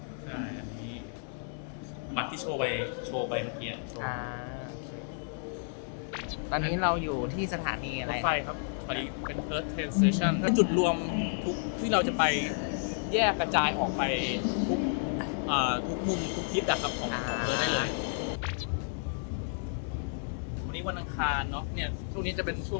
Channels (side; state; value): right; silent; digital silence